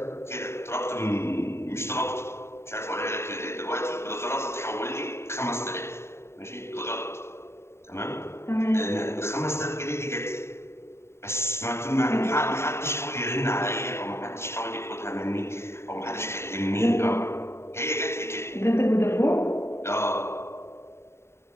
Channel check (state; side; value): late; right; 0.13 ms